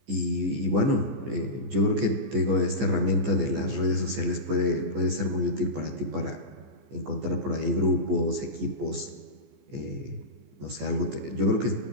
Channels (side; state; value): left; late; 14 ms